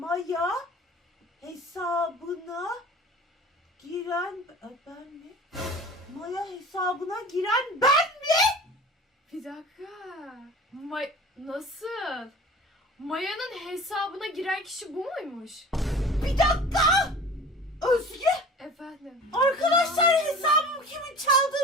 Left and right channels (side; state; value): both; normal; correlation 0.40